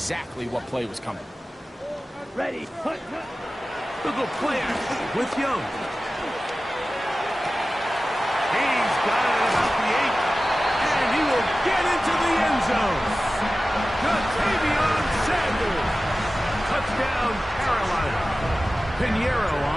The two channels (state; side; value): normal; both; correlation 0.96